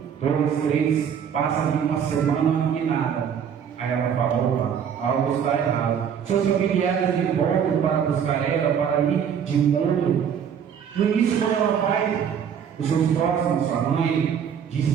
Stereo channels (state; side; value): quieter; left; 8.0 dB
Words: 2, 3, passa ali uma semana e nada. Aí ela fala, opa, algo está errado. Seus familiares de voltam para buscar ela, para ir de encontro. No início, quando ela vai, os seus próximos, sua mãe, diz